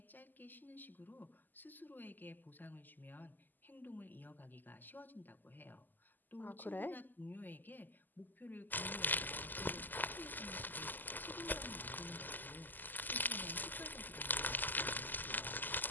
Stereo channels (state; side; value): late; right; 0.087 ms